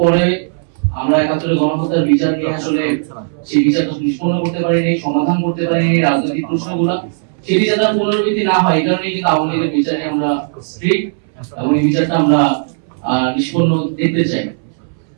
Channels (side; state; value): left; silent; 66 dB below the other